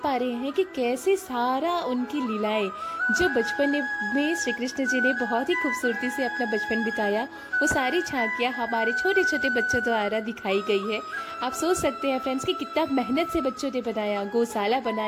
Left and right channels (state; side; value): identical; both; correlation 1.00